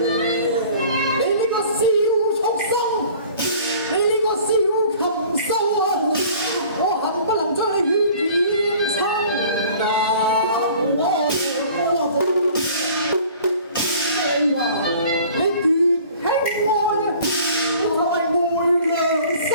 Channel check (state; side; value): inverted; both; correlation -0.49